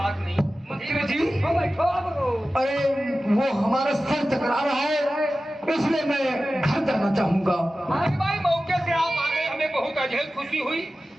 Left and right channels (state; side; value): normal; both; correlation 0.95